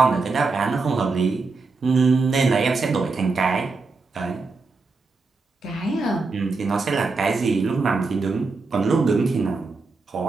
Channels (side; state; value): left; quieter; 4.0 dB